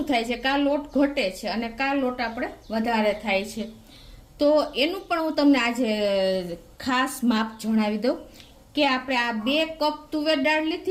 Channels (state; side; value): identical; both; correlation 1.00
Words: થાય છે કે આ લોટ ઘટે છે અને કા લોટ આપણે વધારે થાય છે। તો એનું પણ હું તમને આજે ખાસ માપ જણાવી દઉં કે આપણે આ 2 કપ તુવેર દાળ